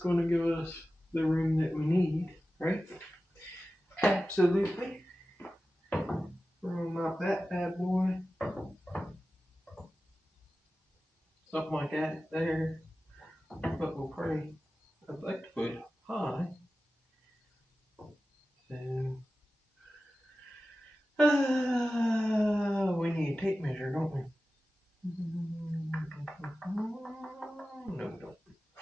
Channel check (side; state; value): both; normal; correlation 0.94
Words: to give us the room that we need, right? Absolutely. Room out that bad boy. Something like that there. But we'll probably, I'd like to put high. So, we need a tape measure, don't we? No, we don't.